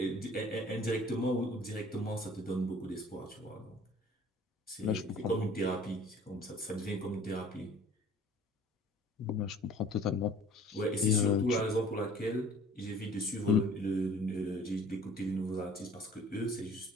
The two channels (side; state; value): both; normal; correlation 0.50